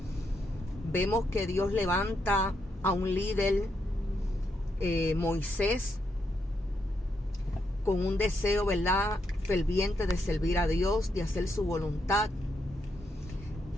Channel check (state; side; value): normal; both; correlation 0.80